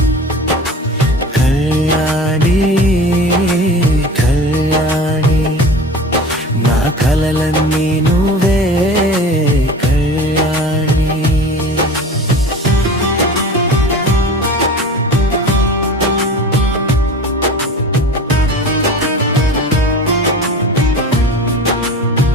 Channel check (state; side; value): normal; both; correlation 0.37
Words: కలలన్నీ నువ్వే కళ్యాణి.